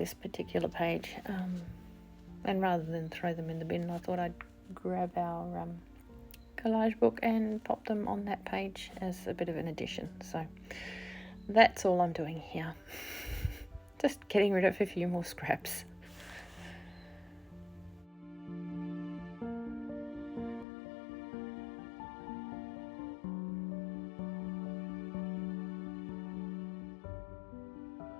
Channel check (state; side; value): drops out; right; at 20.7 s